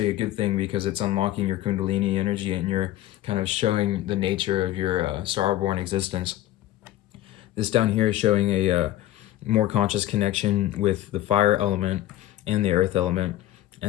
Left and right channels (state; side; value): quieter; right; 14.5 dB